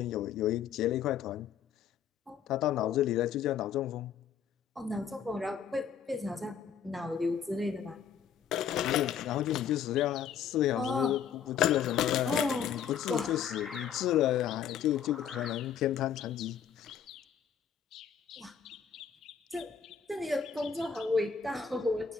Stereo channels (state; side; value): quieter; right; 8.0 dB